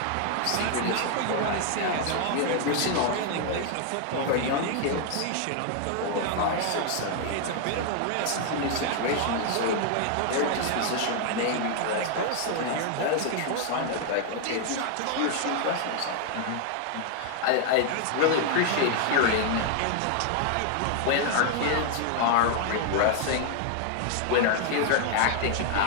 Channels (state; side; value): different; both; correlation 0.00